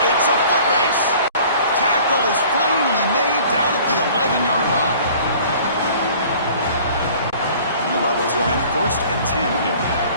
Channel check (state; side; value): inverted; both; correlation -0.50